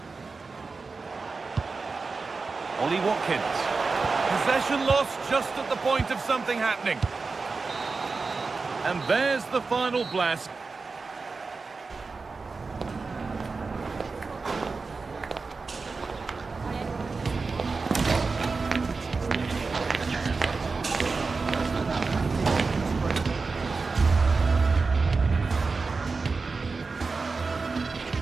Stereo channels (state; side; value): quieter; left; 4.2 dB